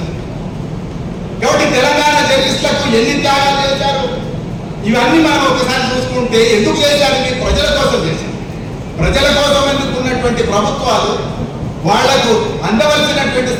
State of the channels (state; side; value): identical; both; correlation 1.00